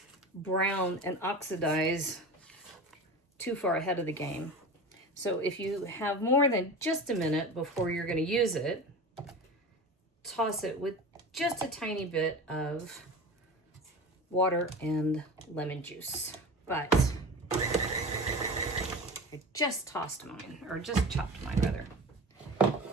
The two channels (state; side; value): normal; both; correlation 0.31